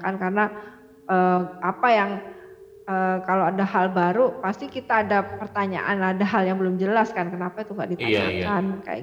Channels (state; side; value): identical; both; correlation 1.00